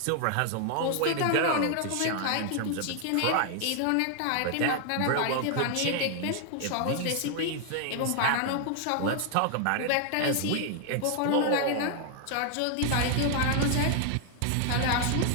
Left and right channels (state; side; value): different; both; correlation 0.00